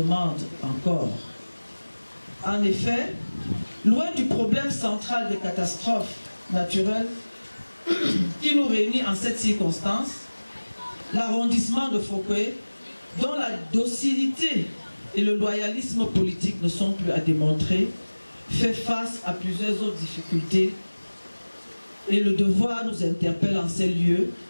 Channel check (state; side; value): inverted; both; correlation -1.00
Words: encore ». En effet, loin du problème central des catastrophes naturelles qui nous réunit en cette circonstance, l'arrondissement de Fokwe, dont la docilité et le loyalisme politique ne sont plus à démontrer, fait face à plusieurs autres difficultés et le devoir nous interpelle en ces lieux